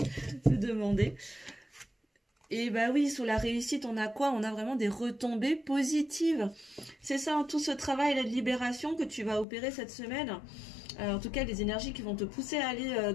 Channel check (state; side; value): drops out; right; at 9.5 s